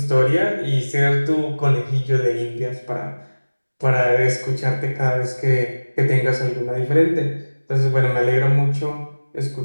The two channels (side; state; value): both; inverted; correlation -1.00